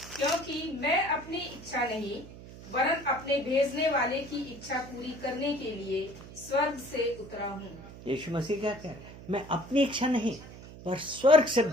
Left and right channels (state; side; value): noise; right; hum, 16 dB below the sound